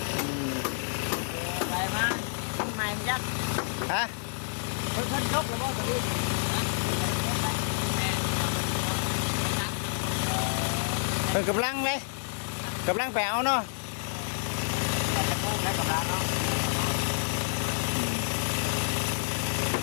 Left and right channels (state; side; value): silent; right; digital silence